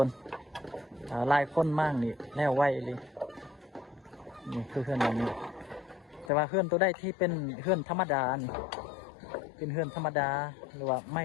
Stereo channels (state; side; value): drops out; right; at 6.3 s